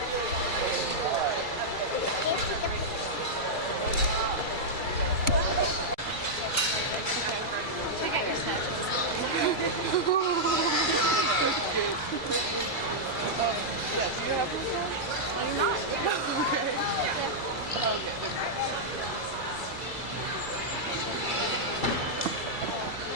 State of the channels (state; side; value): late; right; 2.2 ms